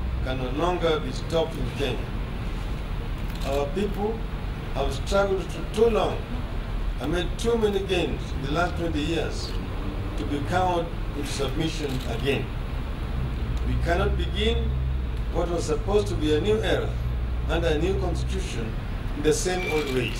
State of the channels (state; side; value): identical; both; correlation 1.00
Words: can no longer be stopped in Kenya. Our people have struggled for too long and made too many gains in the last 20 years to be cowed into submission again. We cannot begin what was supposed to be a new era under a new constitution in the same old